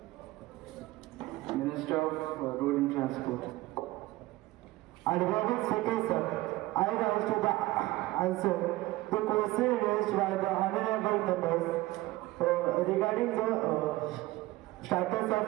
Minister of Road and Transport. Honorable Speaker, sir, I rise to the answer the question raised by the honorable members regarding the status of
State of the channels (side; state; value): left; quieter; 18.5 dB